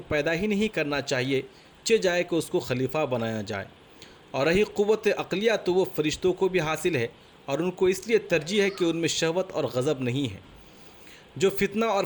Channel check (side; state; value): both; identical; correlation 1.00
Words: پیدا ہی نہیں کرنا چاہیے جائے کہ اس کو خلیفہ بنایا جائے۔ اور رہی قوت عقلیہ تو وہ فرشتوں کو بھی حاصل ہے، اور ان کو اس لیے ترجیح ہے کہ ان میں شہوت اور غضب نہیں ہے۔ جو فتنہ اور